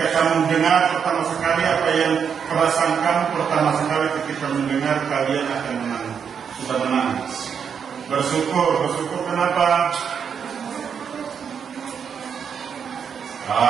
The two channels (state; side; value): quieter; left; 7.1 dB